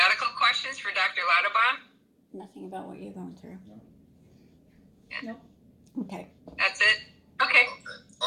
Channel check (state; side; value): identical; both; correlation 1.00